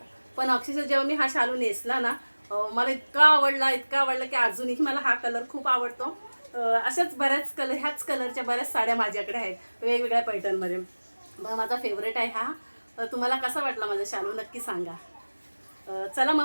पण अक्षरशः जेव्हा मी हा शालू नेसला ना, मला इतका आवडला की अजूनही मला हा कलर खूप आवडतो. अशाच बऱ्याच ह्याच कलरच्या बऱ्याच साड्या माझ्याकडे आहेत वेगवेगळ्या पैठणमध्ये. मग माझा फेवरेट आहे हा. तुम्हाला कसा वाटला माझा शालू नक्की सांगा. चला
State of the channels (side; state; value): both; inverted; correlation -1.00